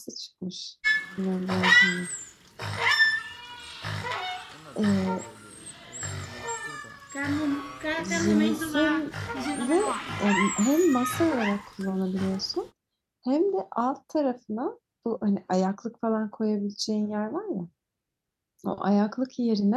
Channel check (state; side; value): identical; both; correlation 1.00